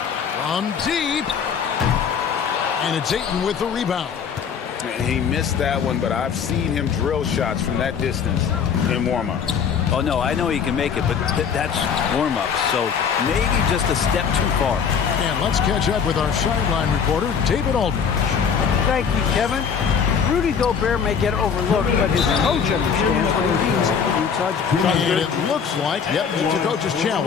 From deep. And it's Ayton with the rebound. He missed that one, but I've seen him drill shots from that distance in warm-up. Oh, no, I know he can make it, but that's warm-up, so maybe just a step too far. And let's catch up with our sideline reporter, David Aldridge. Thank you, Kevin. Rudy Gobert may get overlooked, but his coach understands what he means to the Utah Jazz. And it looks like, yep, it's a coach's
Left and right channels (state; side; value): quieter; right; 6.9 dB